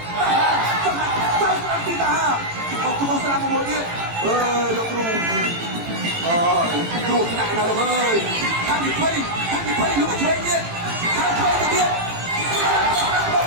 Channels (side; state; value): left; late; 18 ms